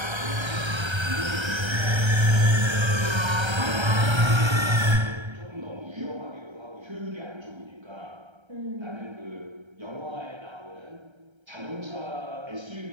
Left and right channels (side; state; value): left; late; 1.3 ms